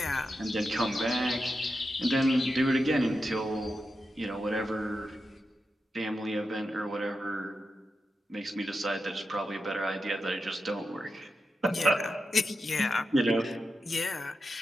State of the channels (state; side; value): normal; both; correlation 0.89